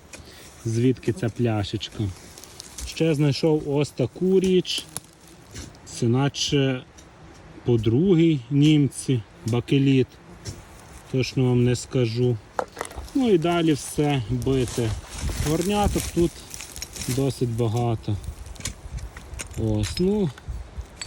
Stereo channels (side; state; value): both; identical; correlation 1.00